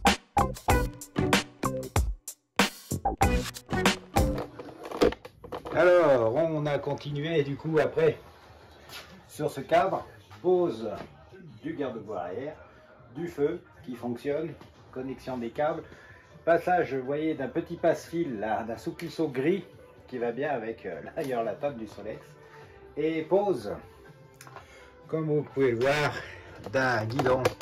Alors, on a continué du coup après sur ce cadre, pose du garde-boue arrière, du feu qui fonctionne, connexion des câbles, passage, vous voyez, d'un petit passe-fil, d'un souplisseau gris qui va bien avec d'ailleurs la table du Solex, et pose, comme vous pouvez le voir, d'un guidon,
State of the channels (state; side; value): identical; both; correlation 1.00